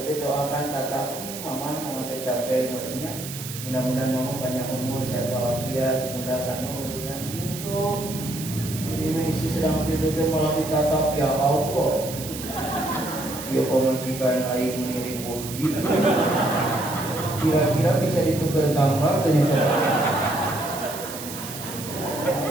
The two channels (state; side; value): noise; right; hiss, 10 dB below the sound